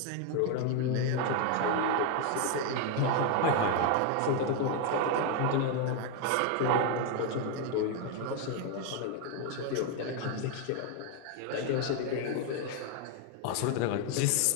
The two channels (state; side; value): different; both; correlation 0.01